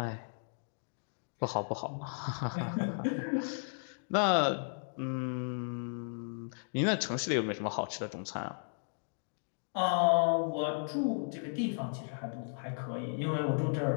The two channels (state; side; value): silent; right; digital silence